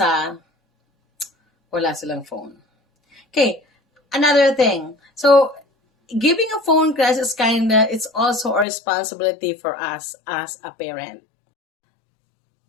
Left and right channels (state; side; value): drops out; right; at 8.7 s